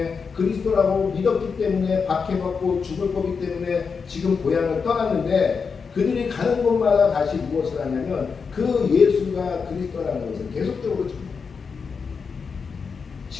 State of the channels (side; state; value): right; quieter; 5.5 dB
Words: 그리스도라고 믿었기 때문에 박해받고 죽을 거기 때문에 지금 고향을 떠났는데, 그들이 가는 곳마다 다시 무엇을 하냐면 그 예수가 그리스도라는 것을 계속적으로 줍니다.